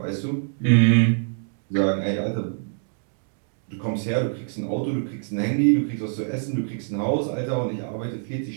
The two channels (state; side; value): silent; left; digital silence